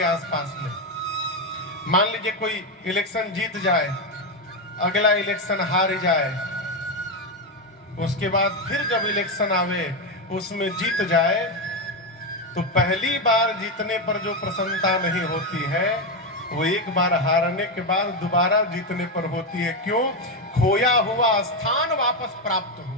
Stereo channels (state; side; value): normal; both; correlation 0.09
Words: आसपास में। मान लीजिए कोई इलेक्शन जीत जाए, अगला इलेक्शन हार जाए, उसके बाद फिर जब इलेक्शन आवे उसमें जीत जाए, तो पहली बार जीतने पर जो प्रसन्नता नहीं होती है, वो एक बार हारने के बाद दोबारा जीतने पर होती है। क्यों? खोया हुआ स्थान वापस प्राप्त